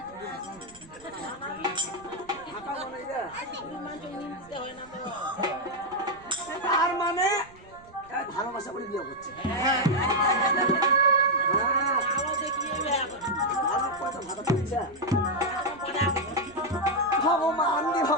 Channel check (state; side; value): noise; right; rumble, 24 dB below the sound